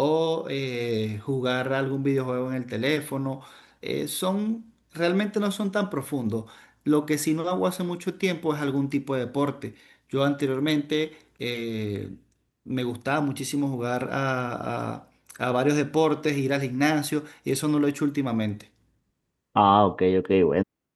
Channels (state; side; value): identical; both; correlation 1.00